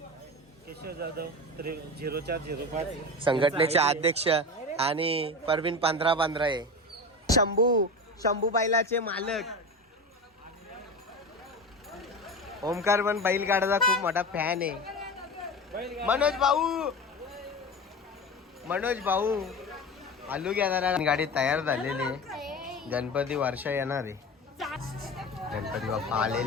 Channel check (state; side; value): normal; both; correlation 0.27